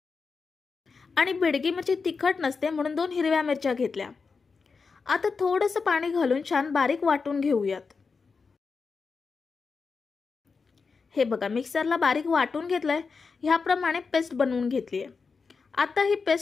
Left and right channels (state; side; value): quieter; right; 4.9 dB